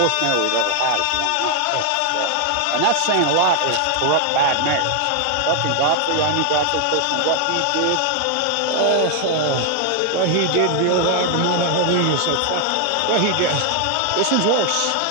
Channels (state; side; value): different; both; correlation 0.00